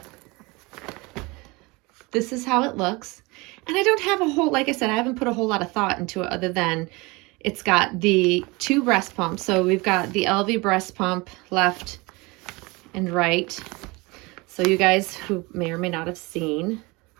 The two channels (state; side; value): quieter; left; 24.9 dB